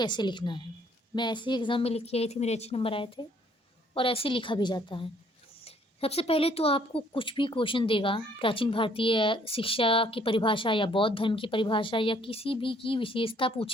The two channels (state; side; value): normal; both; correlation 0.62